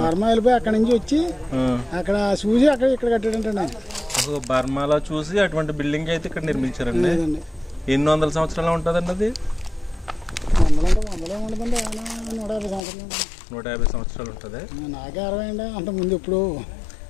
వెళ్ళిపోయి అక్కడ నుంచి వచ్చి అక్కడ చూసి అక్కడ ఇక్కడ కట్టాడంటే బర్మాలో చూసి అటువంటి బిల్డింగ్ అయితే ఇక్కడ నిర్మించారండి. ఎన్ని వందల సంవత్సరాలు ఉంటుందండి అది? 150 సంవత్సరాలు ఉంటుంది. నాకే 60 అండి. అంత ముందు ఇప్పుడు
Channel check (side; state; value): right; drops out; at 12.8 s